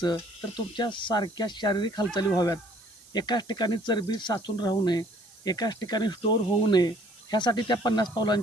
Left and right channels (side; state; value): right; noise; hiss, 24 dB below the sound